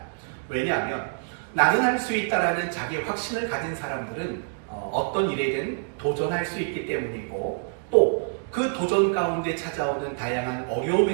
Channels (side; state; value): left; silent; digital silence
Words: 왜냐하면 나는 할 수 있다라는 자기 확신을 가진 사람들은 어떤 일에든 도전할 수 있기 때문이고 또 그 도전 가운데 찾아오는 다양한